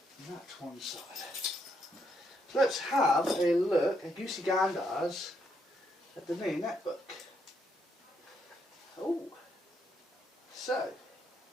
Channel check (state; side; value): normal; both; correlation 0.76